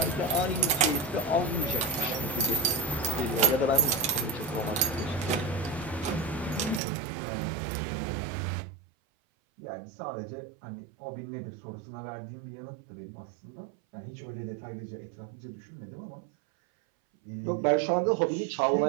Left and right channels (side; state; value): left; drops out; at 6.8 s